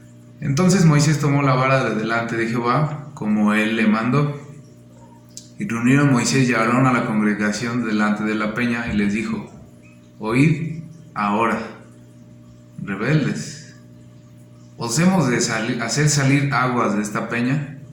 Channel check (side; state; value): both; identical; correlation 1.00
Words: Entonces Moisés tomó la vara de delante de Jehová, como él le mandó, y reunieron Moisés y Aarón a la congregación delante de la peña, y les dijo: Oíd ahora, rebeldes, ¿os hemos de hacer salir aguas de esta peña?